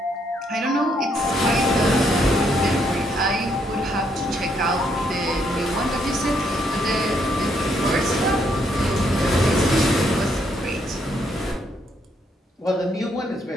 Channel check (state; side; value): normal; both; correlation 0.73